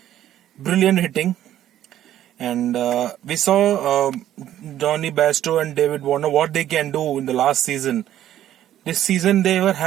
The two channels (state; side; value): quieter; left; 12.0 dB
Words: Brilliant hitting. And we saw Johnny Bairstow and David Warner what they can do in the last season. This season they were